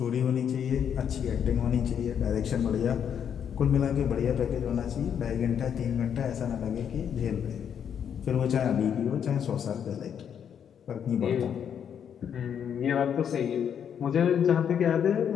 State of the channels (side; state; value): right; quieter; 8.3 dB